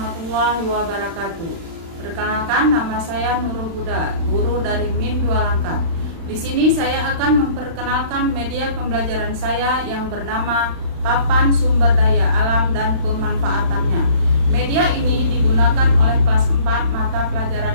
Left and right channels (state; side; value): late; left; 36 ms